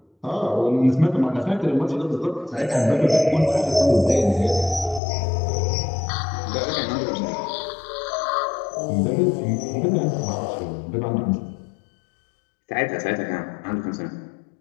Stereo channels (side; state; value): right; drops out; at 5.0 s